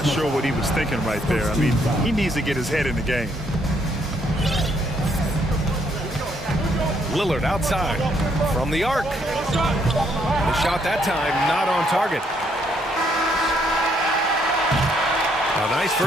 sure what he was thinking right there. I mean, he needs to get his head in the game. Lillard outside from the arc. The shot that time not on target. A nice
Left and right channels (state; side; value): normal; both; correlation 0.71